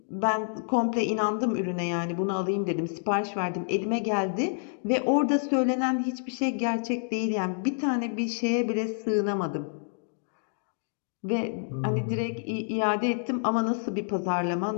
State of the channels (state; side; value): silent; right; digital silence